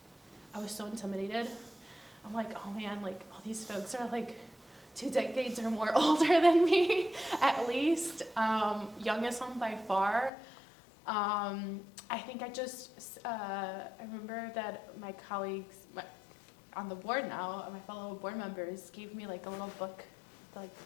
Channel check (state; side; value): drops out; right; at 10.3 s